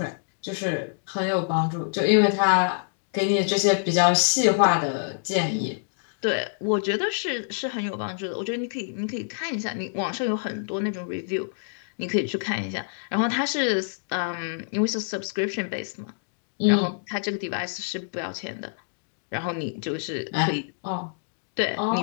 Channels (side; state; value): right; silent; digital silence